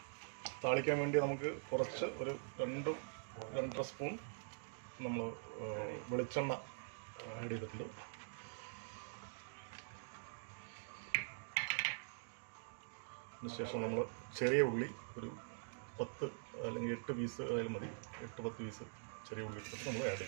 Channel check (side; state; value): left; silent; digital silence